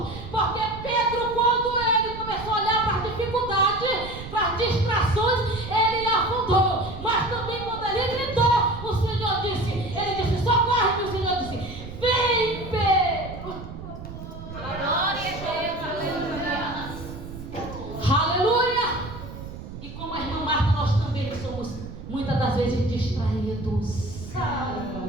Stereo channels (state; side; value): noise; right; rumble, 11 dB below the sound